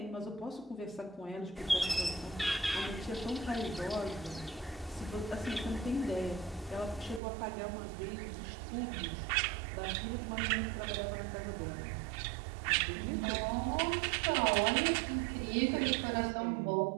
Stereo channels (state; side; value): drops out; left; at 7.2 s